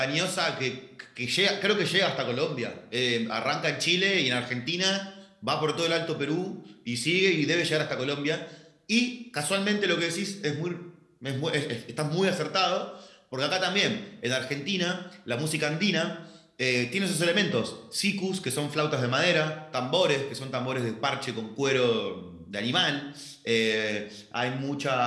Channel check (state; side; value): identical; both; correlation 1.00